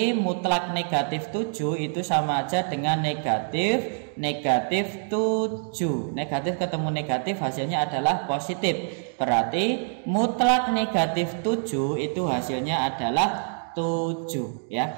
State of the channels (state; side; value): silent; left; digital silence